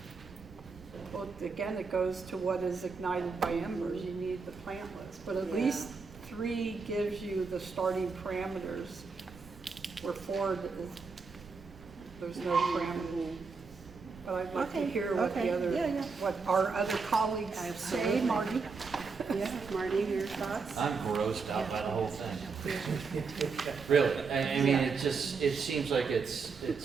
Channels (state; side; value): quieter; left; 4.8 dB